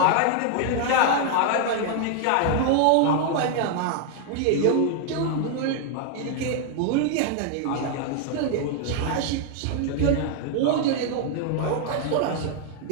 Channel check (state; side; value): different; both; correlation 0.00